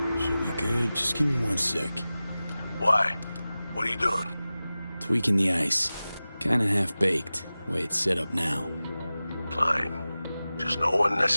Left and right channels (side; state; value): both; inverted; correlation -0.96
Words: Should be good. Just give me 1 sec. Why? What are you doing? Tweaking the ice. Kinda half-baked, way it's set up now. Fine. Just no